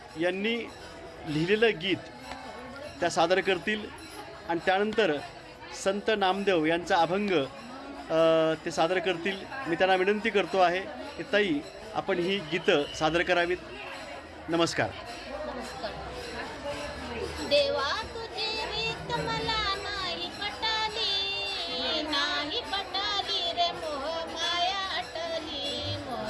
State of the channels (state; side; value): identical; both; correlation 1.00